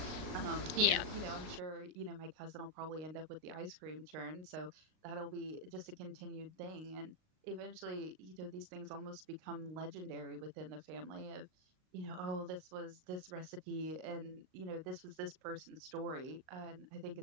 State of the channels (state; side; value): late; left; 38 ms